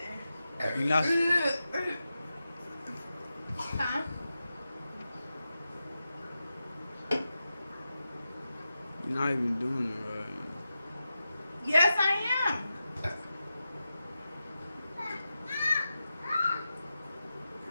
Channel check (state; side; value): inverted; both; correlation -0.90